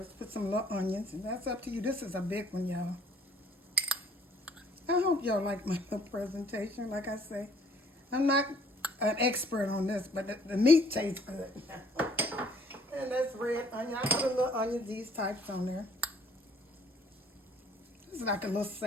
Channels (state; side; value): normal; both; correlation 0.60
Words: Put some little onions, and that's up to you. This is a big one, y'all. I hope y'all like my presentation. Like I say, I'm not an expert on this, but the meat tastes good. And that's red onion. I put a little onion, these types on there. This is like a little